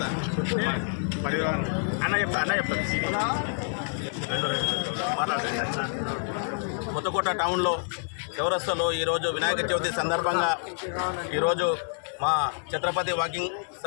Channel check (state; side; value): silent; right; digital silence